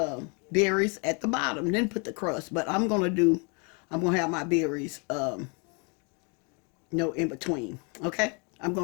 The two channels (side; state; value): right; quieter; 34.4 dB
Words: berries at the bottom, then put the crust. But I'm going to have my berries in between. Okay? I'm